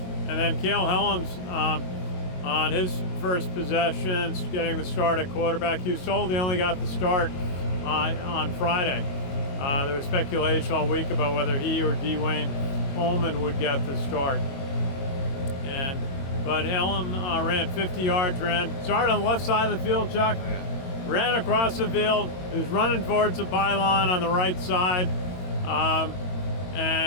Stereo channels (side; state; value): right; late; 22 ms